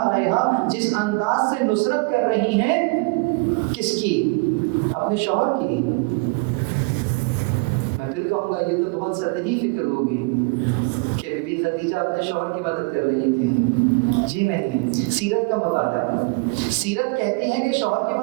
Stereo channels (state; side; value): quieter; left; 28.5 dB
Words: علیہا جس انداز سے نصرت کر رہی ہیں، کس کی؟ اپنے شوہر کی. میں پھر کہوں گا یہ تو بہت سطحی فکر ہوگی کہ بی بی خدیجہ اپنے شوہر کی مدد کر رہی تھی. جی نہیں، سیرت کا مطالعہ. سیرت کہتی ہے کہ شوہر کی